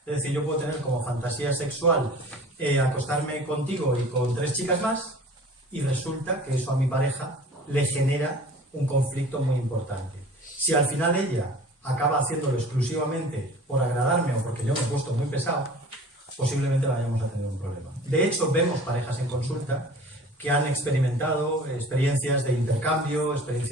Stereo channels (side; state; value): both; normal; correlation 0.44